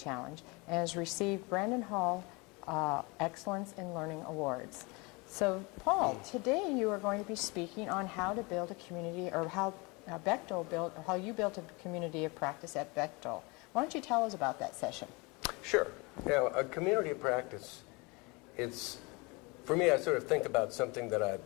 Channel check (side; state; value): right; quieter; 27.3 dB